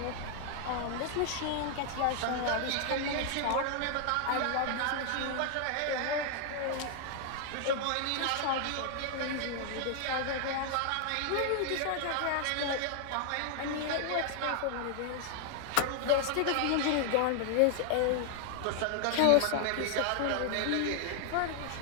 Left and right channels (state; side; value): different; both; correlation 0.00